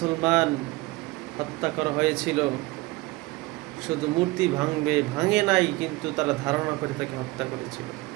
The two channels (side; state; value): left; quieter; 21.8 dB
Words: হত্যা করা হয়েছিল, শুধু মূর্তি ভাঙে নাই, কিন্তু তারা ধারণা করে তাকে হত্যা করেছিল।